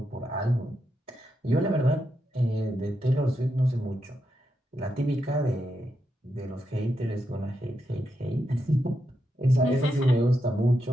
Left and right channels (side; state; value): both; normal; correlation 0.84